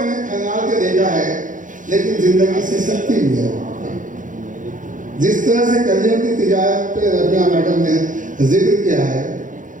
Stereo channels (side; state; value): left; late; 0.38 ms